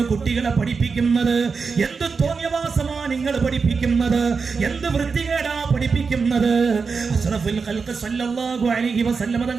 കുട്ടികളെ പഠിപ്പിക്കുന്നത്? എന്ത് തോന്നിയവാസമാ നിങ്ങൾ പഠിപ്പിക്കുന്നത്? എന്ത് വൃത്തികേടാ പഠിപ്പിക്കുന്നത്? അഷ്റഫുൽ ഖൽഖ് സല്ലല്ലാഹു അലൈഹി വസല്ലമ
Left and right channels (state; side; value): quieter; left; 5.0 dB